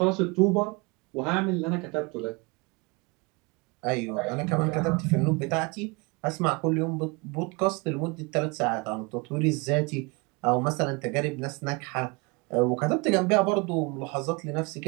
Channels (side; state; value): left; quieter; 27.5 dB